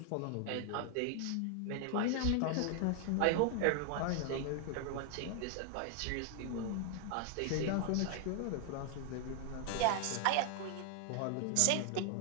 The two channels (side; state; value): both; different; correlation 0.00